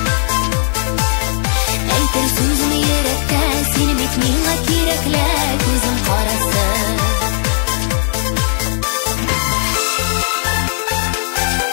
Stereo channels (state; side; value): silent; right; digital silence